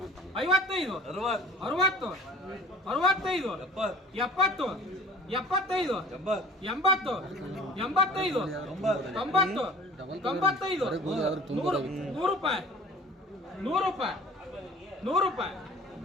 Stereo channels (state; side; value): normal; both; correlation 0.46